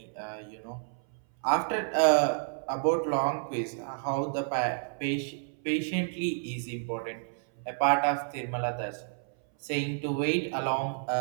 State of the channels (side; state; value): left; silent; 58 dB below the other